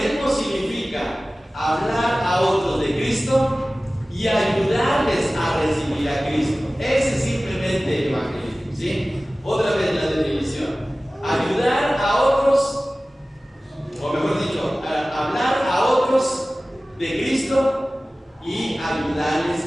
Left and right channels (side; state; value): both; normal; correlation 0.97